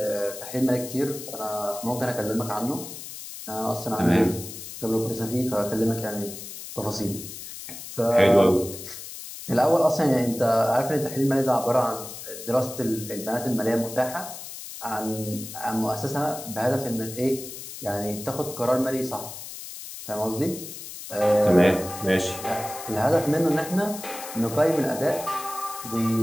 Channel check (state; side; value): noise; left; hiss, 11 dB below the sound